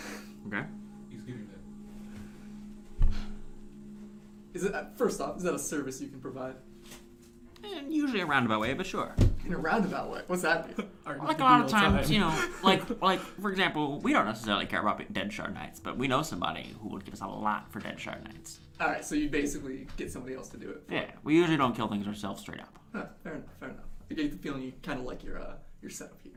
Okay. He's getting that. Is it first off? Is that a service you can provide Usually a roundabout way, but sure. in a roundabout way? What's that mean? Like a lot of times, you know, like for example, we don't necessarily care about dead shard knights, but we know somebody who would give us a lot for dead shard knights. All right, so you basically get somebody else to do it. Yeah, we usually don't kill things ourselves straight up. Huh, fair enough. Fair enough. I get the feeling you kind of like your setup here.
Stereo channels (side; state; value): both; identical; correlation 1.00